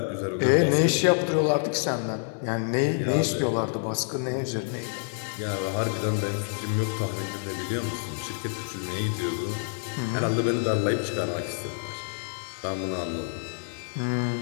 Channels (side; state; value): right; silent; 55 dB below the other